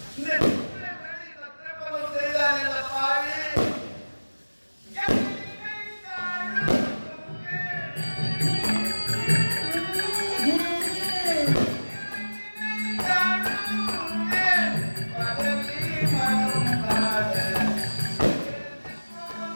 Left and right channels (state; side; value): inverted; both; correlation -1.00